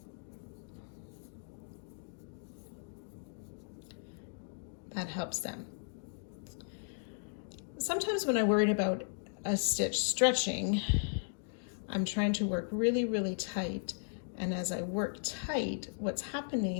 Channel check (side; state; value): right; silent; digital silence